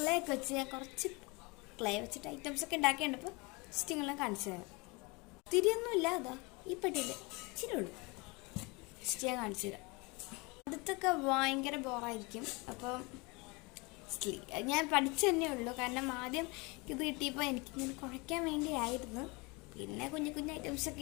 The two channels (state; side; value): quieter; right; 27.3 dB